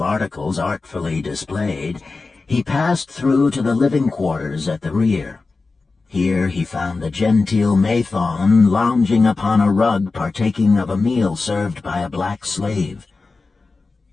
articles artfully displayed, he passed through to the living quarters at the rear. Here he found the genteel Mathon lounging upon a rug partaking of a meal served by a black slave.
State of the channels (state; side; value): quieter; right; 3.9 dB